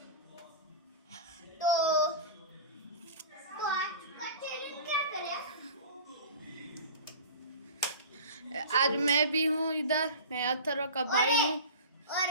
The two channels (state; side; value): inverted; both; correlation -0.35